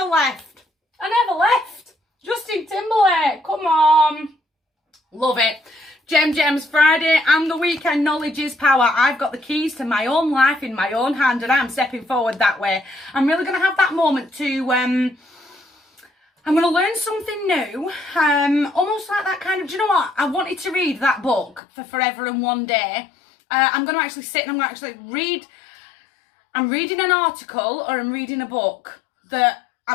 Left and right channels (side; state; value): right; drops out; at 21.6 s